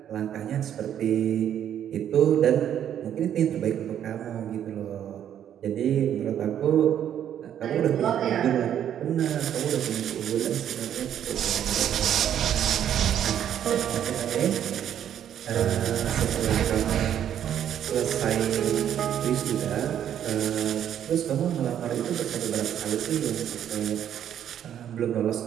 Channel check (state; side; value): quieter; left; 10.0 dB